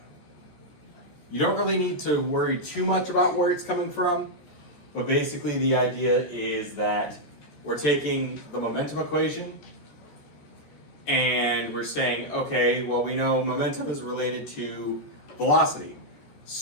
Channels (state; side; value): late; right; 14 ms